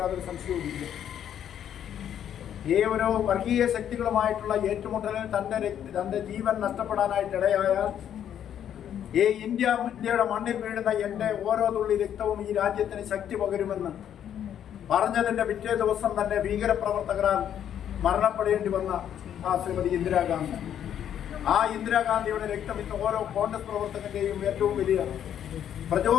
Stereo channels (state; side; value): quieter; right; 9.8 dB